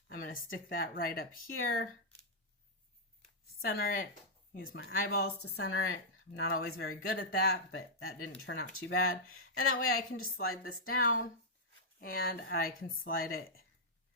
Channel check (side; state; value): both; normal; correlation -0.08